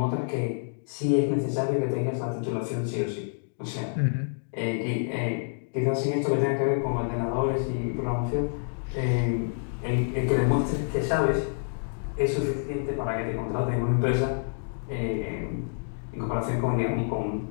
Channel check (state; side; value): silent; right; digital silence